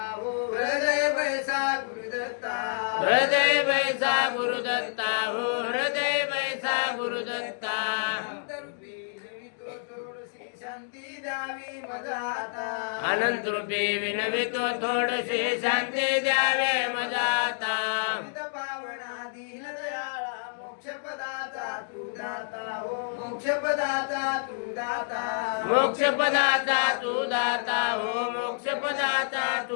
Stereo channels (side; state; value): right; silent; digital silence